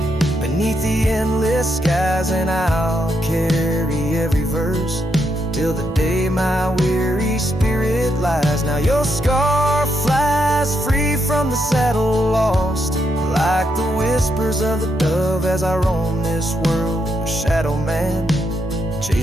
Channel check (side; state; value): both; normal; correlation 0.80